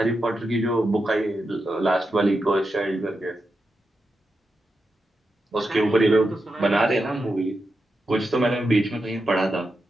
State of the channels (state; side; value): normal; both; correlation 0.88